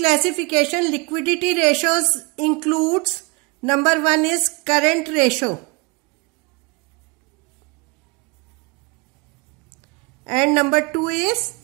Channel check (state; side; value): quieter; left; 29.2 dB